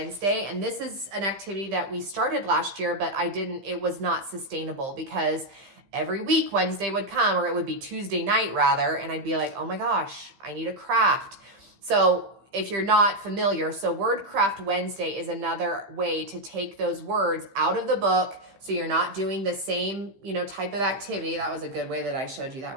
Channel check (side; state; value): left; late; 15 ms